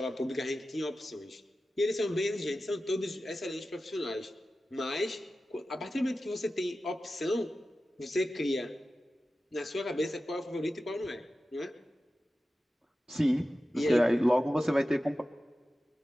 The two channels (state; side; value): normal; both; correlation 0.94